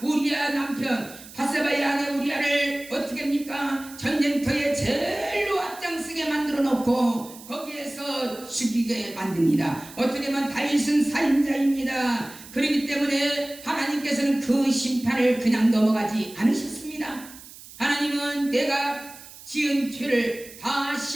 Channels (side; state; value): right; noise; hiss, 18 dB below the sound